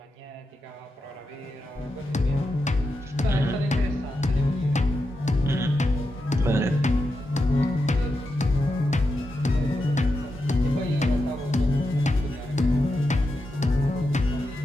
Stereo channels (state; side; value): normal; both; correlation 0.87